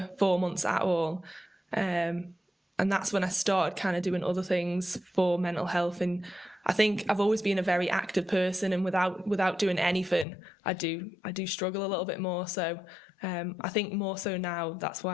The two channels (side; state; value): right; drops out; at 10.2 s